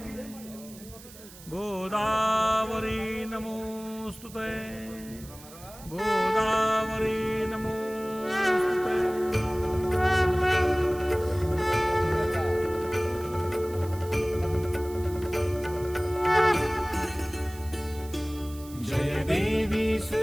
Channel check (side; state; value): right; noise; hiss, 19 dB below the sound